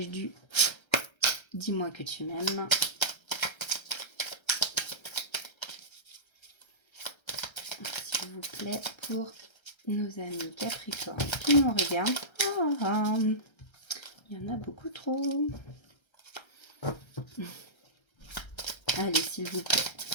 du « Dis-moi que tu m'aimes ». S'il vous plaît, pour nos amis Capricorne qui nous regardent. Il y en a beaucoup trop. Allez, s'il vous plaît.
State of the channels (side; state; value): right; late; 1.3 ms